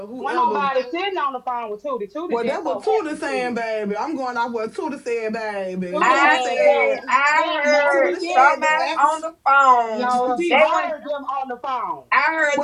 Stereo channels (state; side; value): identical; both; correlation 1.00